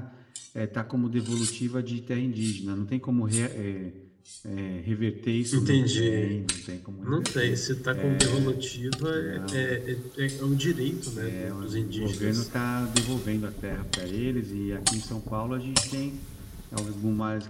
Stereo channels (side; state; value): both; identical; correlation 1.00